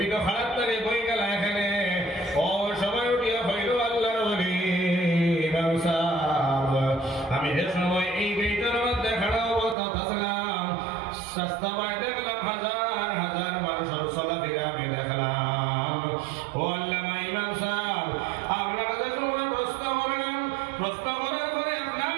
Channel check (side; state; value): left; drops out; at 9.8 s